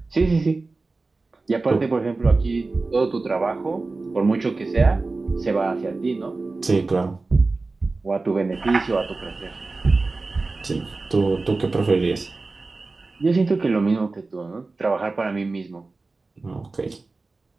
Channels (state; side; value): quieter; left; 3.6 dB